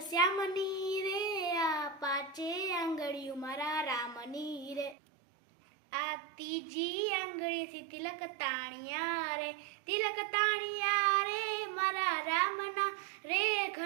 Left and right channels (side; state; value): left; drops out; at 5.0 s